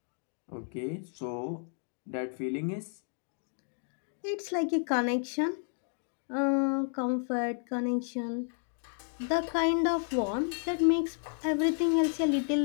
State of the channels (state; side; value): silent; right; 57 dB below the other